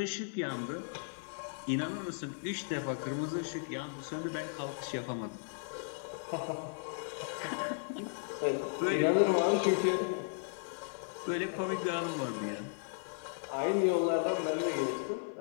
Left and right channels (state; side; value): silent; right; 54 dB below the other